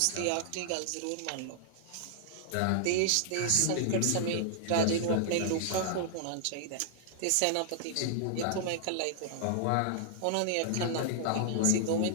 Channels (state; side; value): different; both; correlation -0.01